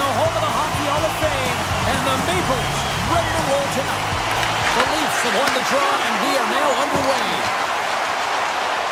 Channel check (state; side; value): identical; both; correlation 1.00